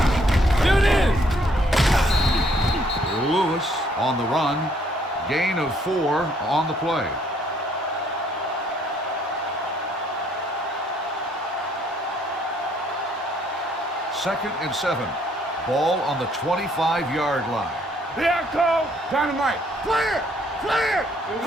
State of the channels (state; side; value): normal; both; correlation 0.66